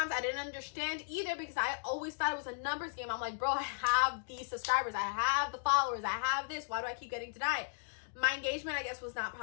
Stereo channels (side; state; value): right; silent; digital silence